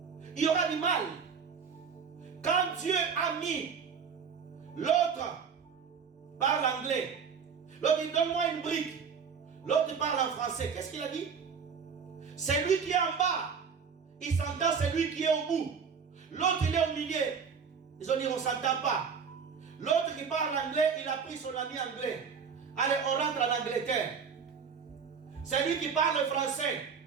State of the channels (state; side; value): quieter; left; 6.3 dB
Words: Il y aura du mal. Quand Dieu a mis l'autre parle anglais, l'autre dit donne-moi une brique, l'autre parle en français, qu'est-ce qu'il a dit? C'est lui qui est en bas, il s'entend, c'est lui qui est au bout. L'autre il est au milieu. Ils ont dit on ne s'entend pas. L'autre qui parle anglais, il a pris son ami anglais. Allez, on rentre en Angleterre. C'est lui qui parle français.